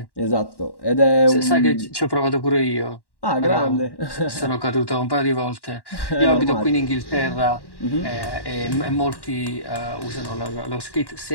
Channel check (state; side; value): late; right; 1.1 ms